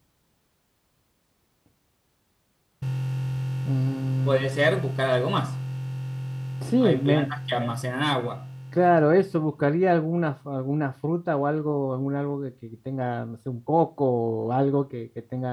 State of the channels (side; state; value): both; identical; correlation 1.00